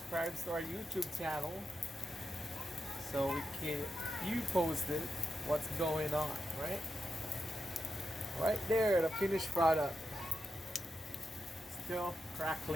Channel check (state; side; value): normal; both; correlation 0.87